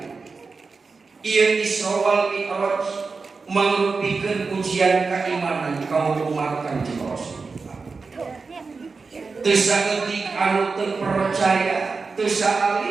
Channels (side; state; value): left; quieter; 4.5 dB